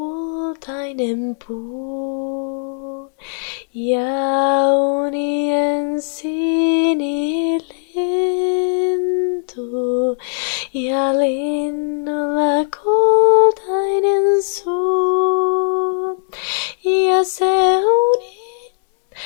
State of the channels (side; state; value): right; silent; digital silence